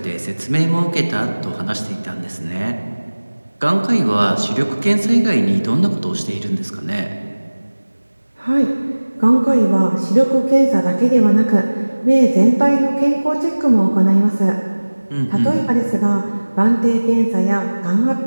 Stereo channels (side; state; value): both; inverted; correlation -1.00